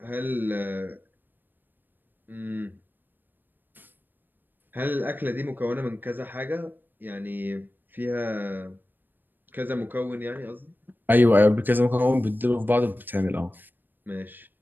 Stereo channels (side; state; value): left; late; 0.092 ms